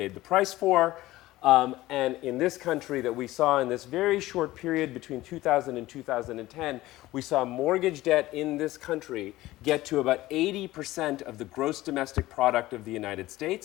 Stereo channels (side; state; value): right; quieter; 17.1 dB